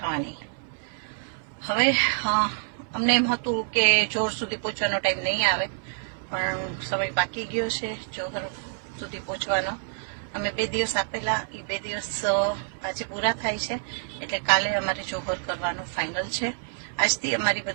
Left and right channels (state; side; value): silent; left; 60 dB below the other